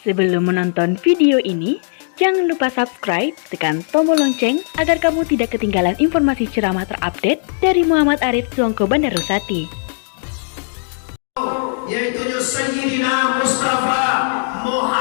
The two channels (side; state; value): right; silent; digital silence